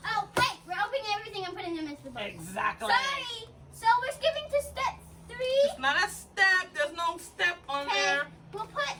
Oh wait, we're opening everything and putting them into the bowl. Exactly. Sorry. So we're skipping to step 3. It's not a step. There's no step on there.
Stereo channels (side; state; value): both; identical; correlation 1.00